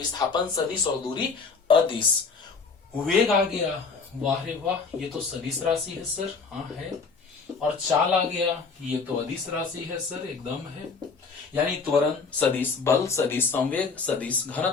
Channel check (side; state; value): right; quieter; 4.8 dB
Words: सदिश और दूरी अदिश। वेग आ गया, वाह रे वाह, ये तो सदिश राशि है सर, हाँ है। और चाल आ गया, ये तो अदिश राशि है सर, एकदम है। यानी त्वरण सदिश, बल सदिश, संवेग सदिश,